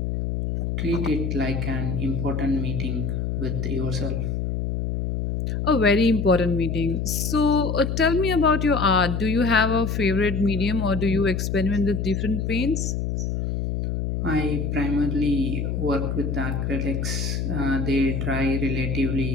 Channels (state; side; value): noise; left; hum, 1 dB below the sound